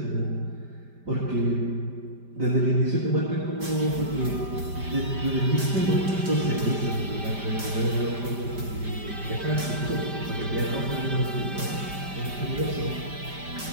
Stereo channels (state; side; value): late; left; 5.1 ms